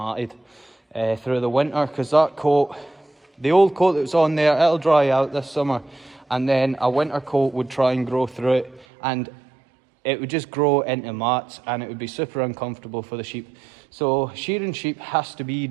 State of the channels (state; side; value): drops out; left; at 8.8 s